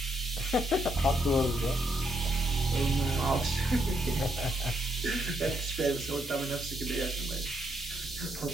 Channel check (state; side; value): normal; both; correlation 0.75